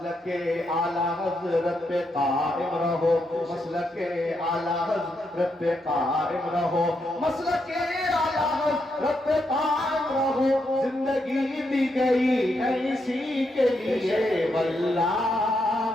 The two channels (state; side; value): normal; both; correlation 0.81